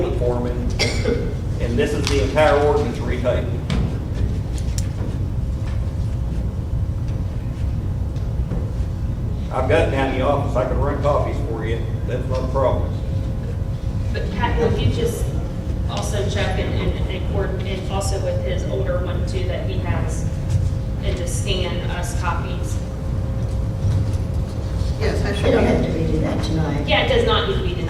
it for me, and this is the entire ordinance retyped. I've got it down in the office, I can run copies for you, that's not a problem. But Pat, would you just also check and also with his older one too that he has, and just scan us copies? Yes, I You should. don't have to redo that tonight. Yeah, it does not need to be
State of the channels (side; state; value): both; identical; correlation 1.00